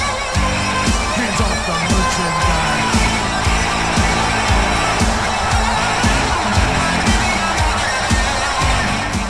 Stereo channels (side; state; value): both; identical; correlation 1.00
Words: Hands off the merchandise.